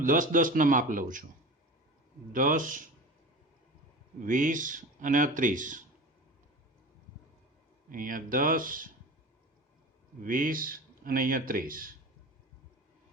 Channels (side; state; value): both; normal; correlation 0.32